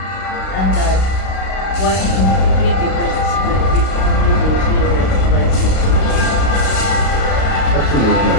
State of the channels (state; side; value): late; right; 32 ms